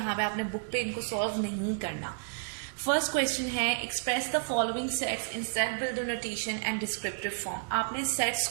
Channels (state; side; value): silent; left; digital silence